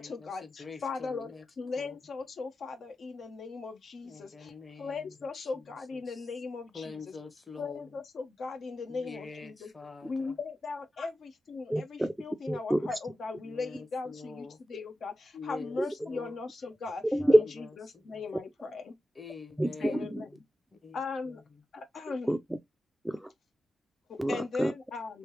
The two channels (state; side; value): normal; both; correlation 0.93